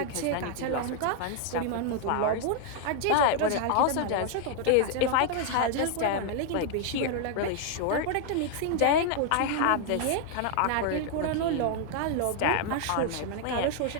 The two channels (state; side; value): different; both; correlation 0.00